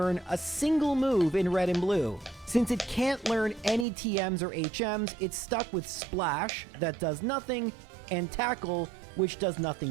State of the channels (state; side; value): drops out; left; at 3.9 s